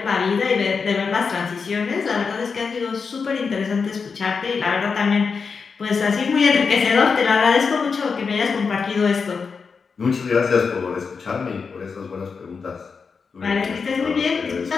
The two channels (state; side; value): quieter; right; 5.3 dB